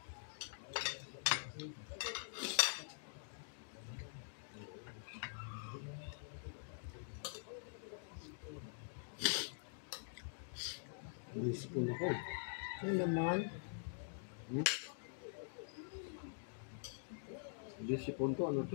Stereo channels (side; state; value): right; silent; digital silence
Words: Naisipon ako eh. Ano naman? Naisipon ko, ano